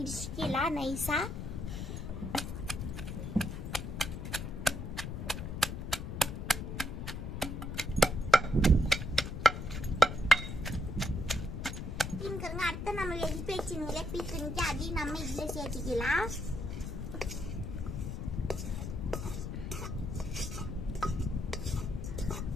நைஸா. அடுத்து நம்ம வெடிப்பு வச்சுங்களே பீக்கணிக்கு அதையும் நம்ம இதில் சேர்த்திக்கலாம்.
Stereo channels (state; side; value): noise; left; rumble, 5 dB below the sound